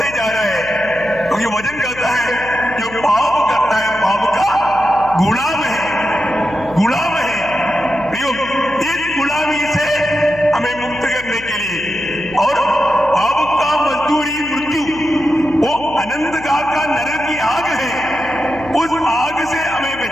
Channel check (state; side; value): noise; left; hum, 17 dB below the sound